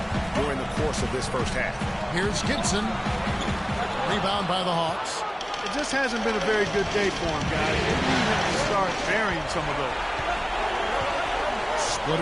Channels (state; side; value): identical; both; correlation 1.00